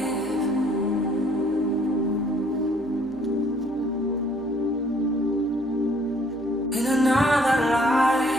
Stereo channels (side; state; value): left; noise; hum, 22 dB below the sound